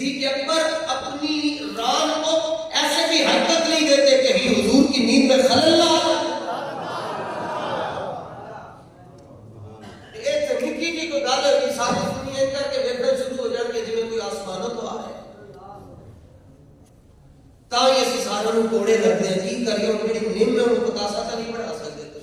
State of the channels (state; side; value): identical; both; correlation 1.00